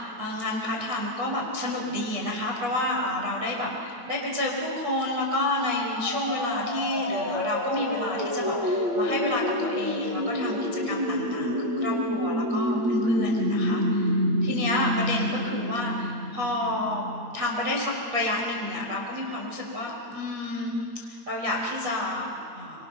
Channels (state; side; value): late; left; 8.3 ms